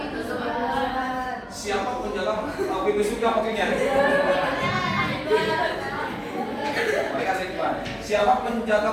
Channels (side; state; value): both; identical; correlation 1.00